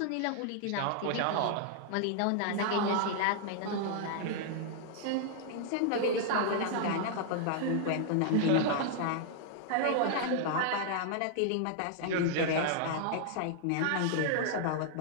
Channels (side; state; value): both; different; correlation -0.01